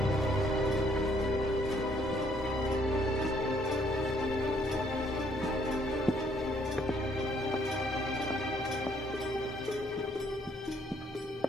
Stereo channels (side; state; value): both; normal; correlation 0.66